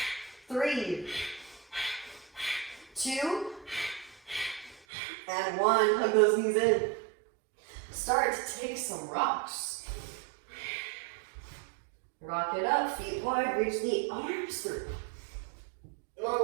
3, 2, and 1. Hug those knees in. Start to take some rocks. Rock it up, feet wide, reach the arms through.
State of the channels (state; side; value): drops out; left; at 4.8 s